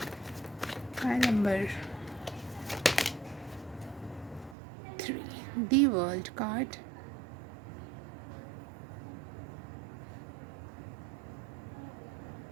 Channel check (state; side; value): drops out; left; at 4.5 s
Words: Number 3 the world card.